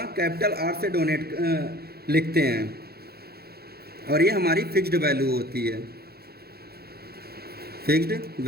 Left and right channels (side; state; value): left; late; 0.46 ms